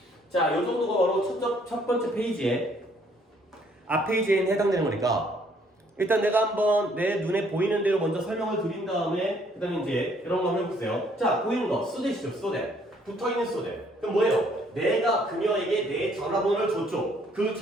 자, 요 정도가 바로 첫 번째 페이지에 앞 페이지에 해당되는 거니까 일단 내가 한번 내 눈에 보이는 대로 먼저 설명을 드린 다음에 그 다음에 이제 이런 거 한번 해볼게요. 자, 보이는 거 so that이죠. so that. 붙어있는 so that. 그럼 뭐예요? 내가 그녀에게 내 전화번호를 줬죠. 그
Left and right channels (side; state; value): both; normal; correlation 0.64